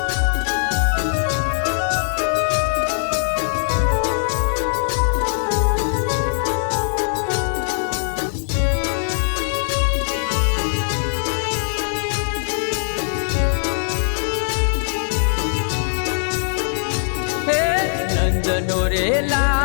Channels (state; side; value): silent; right; 64 dB below the other